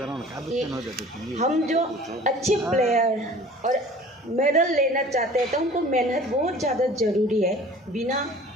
कि हम जो अच्छे प्लेयर और मेडल लेना चाहते हैं तो उनको मेहनत बहुत ज़्यादा ज़रूरी है, बिना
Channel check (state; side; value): normal; both; correlation 0.46